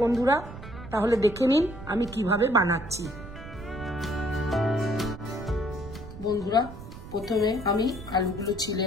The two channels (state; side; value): noise; right; rumble, 13 dB below the sound